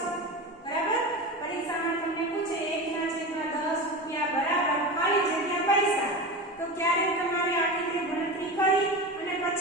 બરાબર. પરીક્ષામાં તમને પૂછે 1/10 રૂપિયા બરાબર ખાલી જગ્યા પૈસા. તો ક્યારે તમારે આ રીતે ગણતરી કરી અને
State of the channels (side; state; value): both; normal; correlation 0.26